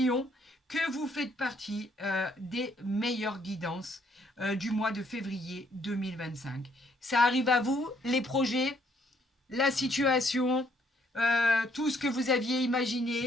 que vous faites partie des meilleures guidances du mois de février 2025. Ça arrive à vous, les projets, la situation, tout ce que vous aviez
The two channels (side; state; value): both; normal; correlation 0.68